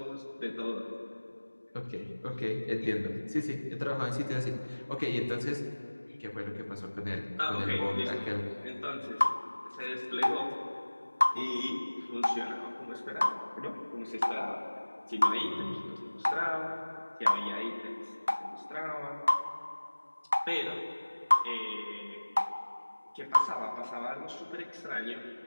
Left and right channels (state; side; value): inverted; both; correlation -1.00